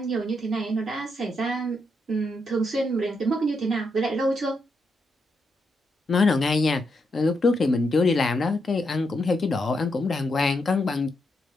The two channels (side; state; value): both; normal; correlation 0.81